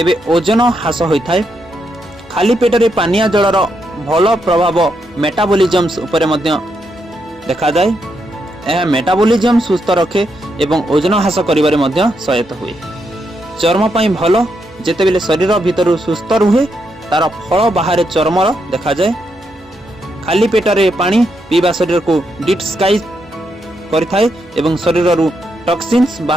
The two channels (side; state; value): both; normal; correlation 0.80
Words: ओजन ह्रास होई थाए। खाली पेट रे पानिया जलर भल प्रभाव मेटाबॉलिज्म उपरे मध्य देखा जाए। यह मेटाबॉलिज्म सुस्थ रखे एवं ओजन ह्रास करिबारे मध्य सहायता हुए। चर्म पई भल जेतेबेले शरीर भितर सुस्थ रुहे तार फल बाहर चर्म देखा जाए। खाली पेट रे पानी पीबा शरीर को डिटॉक्साइज करिथाए एवं शरीर रु टॉक्सिन्स